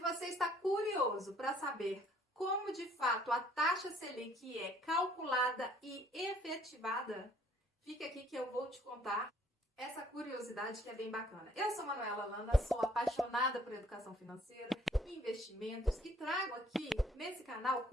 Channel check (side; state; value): both; normal; correlation 0.61